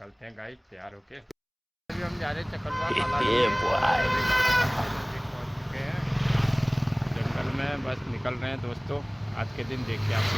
हैं गाइस तैयार होके। अभी हम जा रहे हैं चकलवा काला पहुँच चुके हैं जंगल में, बस निकल रहे हैं। दोस्तों, आज के दिन देखिए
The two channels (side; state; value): both; identical; correlation 1.00